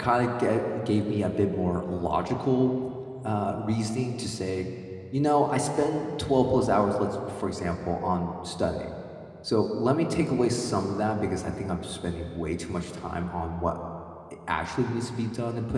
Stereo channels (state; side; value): identical; both; correlation 1.00